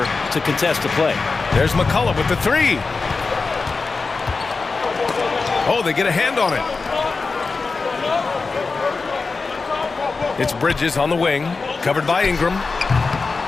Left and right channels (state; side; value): quieter; right; 4.2 dB